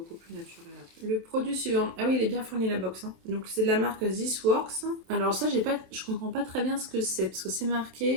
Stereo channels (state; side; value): late; left; 27 ms